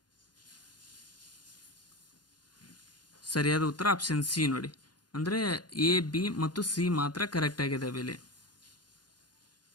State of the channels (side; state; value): right; late; 0.70 ms